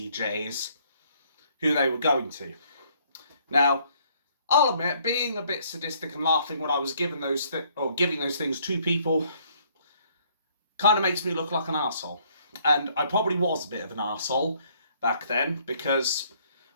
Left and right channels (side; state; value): both; inverted; correlation -0.64